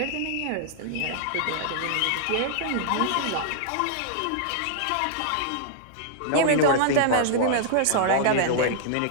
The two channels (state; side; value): different; both; correlation -0.01